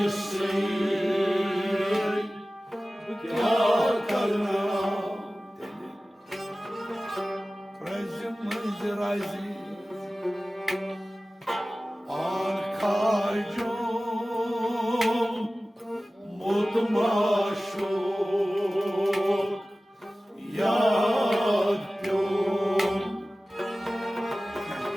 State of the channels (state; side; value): normal; both; correlation 0.97